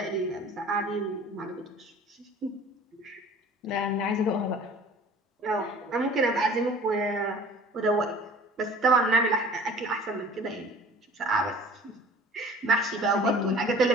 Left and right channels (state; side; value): normal; both; correlation 0.46